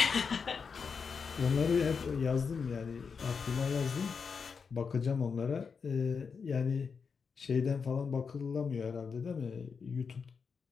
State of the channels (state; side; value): quieter; right; 5.7 dB